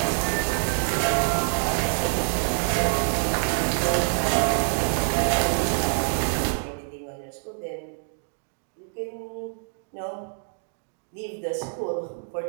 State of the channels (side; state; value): left; silent; digital silence